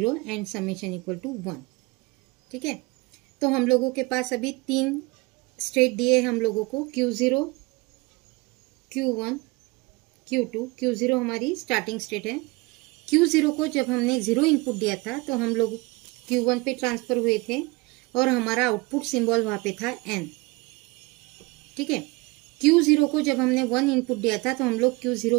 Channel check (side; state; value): left; quieter; 24.7 dB